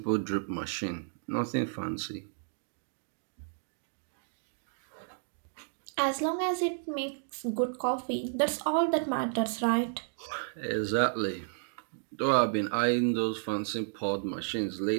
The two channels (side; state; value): left; silent; digital silence